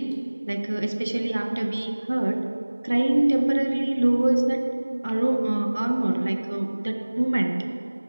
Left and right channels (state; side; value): inverted; both; correlation -1.00